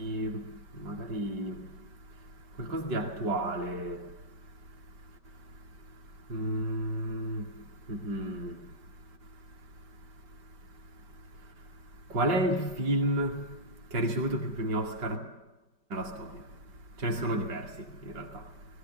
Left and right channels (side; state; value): left; late; 5.2 ms